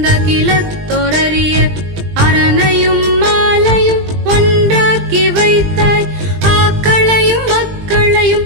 கிலத்தொரறிய அரணையும் மாலையும் ஒன்றாக்கி வைத்தாய் ஆக்களையும் மக்களையும்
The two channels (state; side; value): late; left; 20 ms